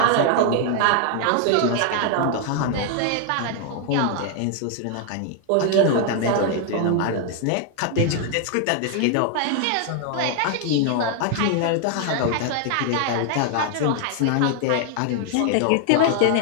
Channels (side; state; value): both; different; correlation 0.00